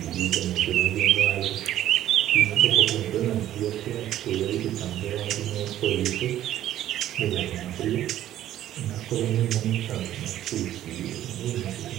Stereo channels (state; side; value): quieter; left; 12.5 dB